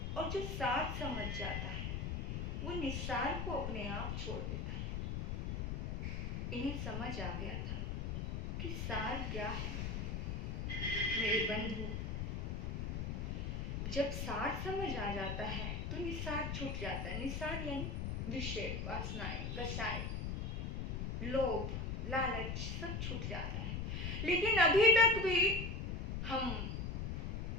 और जो सार समझ जाता है वो निस्सार को अपने आप छोड़ देता है। इन्हें समझ आ गया था कि सार क्या है। मेरे बंधु, जब सार समझ आ जाता है तो निस्सार छूट जाता है। निस्सार यानी विषय, वासनाएं, कसाय, लोभ, लालच सब छूट जाता है। लेकिन अभी तक भी हम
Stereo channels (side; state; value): left; noise; rumble, 2 dB below the sound